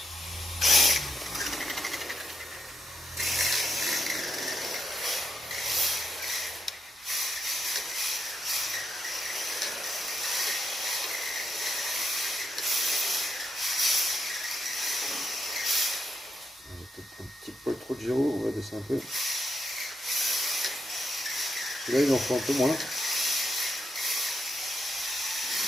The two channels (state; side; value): normal; both; correlation 0.81